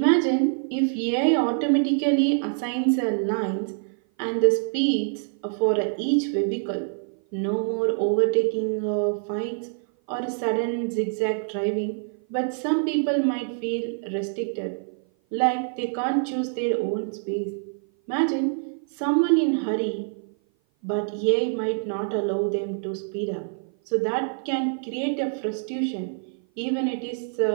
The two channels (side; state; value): left; silent; 56 dB below the other